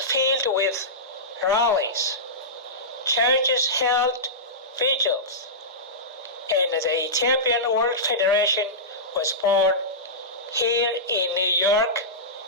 filled with rallies, churches held vigils, and the Ethiopian World Federation was born here in New York,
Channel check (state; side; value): normal; both; correlation -0.16